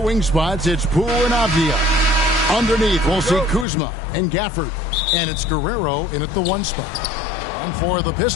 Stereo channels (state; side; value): drops out; right; at 3.7 s